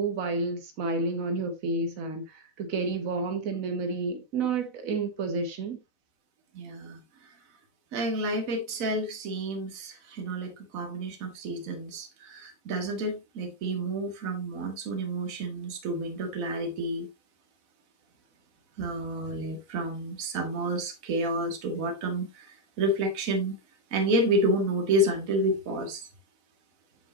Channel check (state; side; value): late; left; 4.0 ms